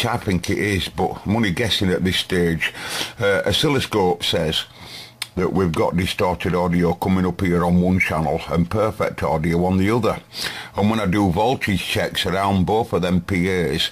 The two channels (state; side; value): identical; both; correlation 1.00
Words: I think it is, but I'm only guessing at this stage. Oscilloscope says that we've got distorted audio coming up here on one channel and perfect audio on the other. And when I do voltage checks around both of them PAs,